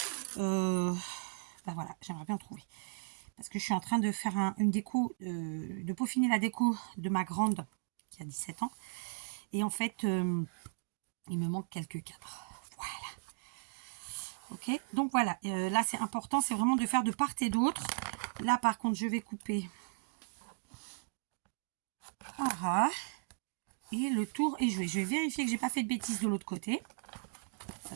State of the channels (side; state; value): left; silent; digital silence